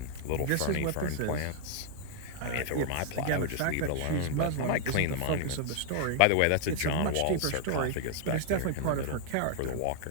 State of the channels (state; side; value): different; both; correlation 0.00